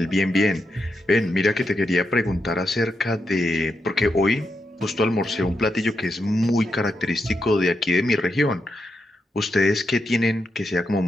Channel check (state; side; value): normal; both; correlation 0.85